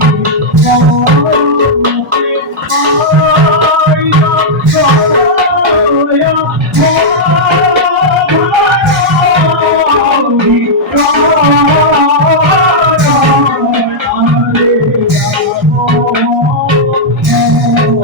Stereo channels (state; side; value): normal; both; correlation -0.06